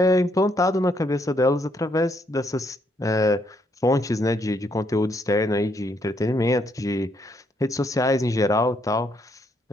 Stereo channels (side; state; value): both; normal; correlation 0.73